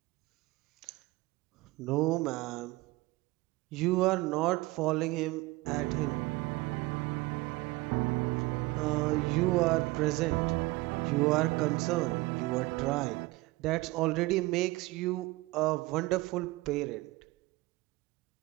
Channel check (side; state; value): left; quieter; 21.0 dB